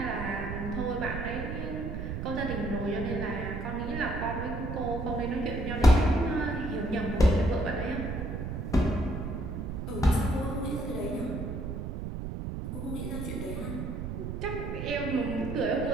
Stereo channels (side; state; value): right; noise; rumble, 5 dB below the sound